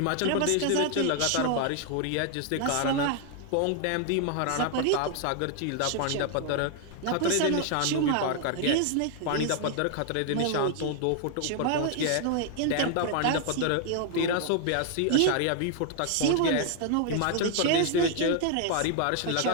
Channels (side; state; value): both; different; correlation 0.00